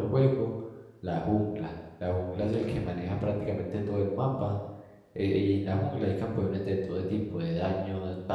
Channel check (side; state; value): both; identical; correlation 1.00